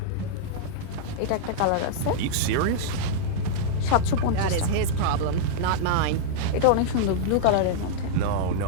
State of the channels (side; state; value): both; different; correlation -0.02